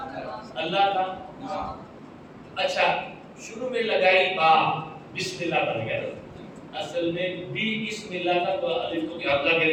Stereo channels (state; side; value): identical; both; correlation 1.00